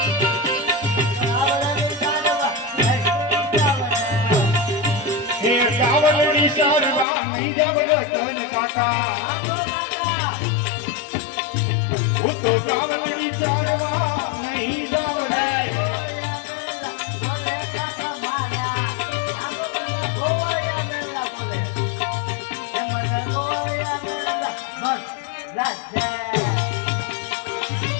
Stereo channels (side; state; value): right; drops out; at 7.1 s